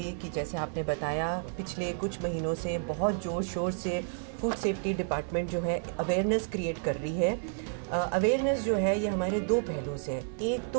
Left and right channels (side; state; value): left; silent; 55 dB below the other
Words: कि जैसे आपने बताया पिछले कुछ महीनों से बहुत ज़ोर शोर से फूड सेफ्टी डिपार्टमेंट जो है अवेयरनेस क्रिएट कर रही है। अवेयरनेस जो है ये हमारे 2 पहलू से है। एक